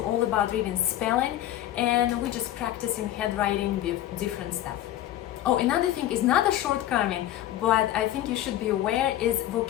all about reading spelling, and we're just practicing handwriting with different stuff. Oh, another thing is not a shortcoming, but I think you should be aware, is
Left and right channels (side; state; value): right; quieter; 13.1 dB